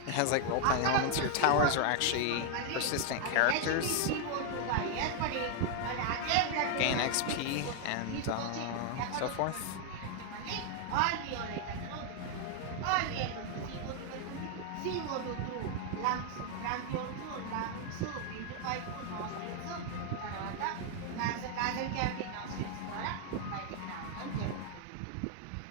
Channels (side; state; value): both; different; correlation 0.00